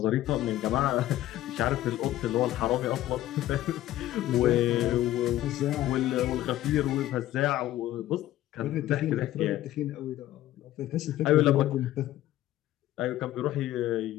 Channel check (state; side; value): quieter; right; 14.2 dB